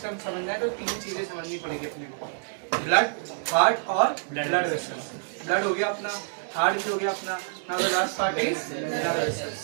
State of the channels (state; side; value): silent; left; 59 dB below the other